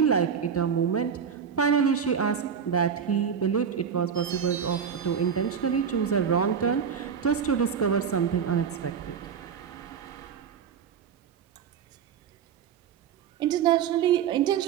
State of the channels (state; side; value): quieter; left; 7.3 dB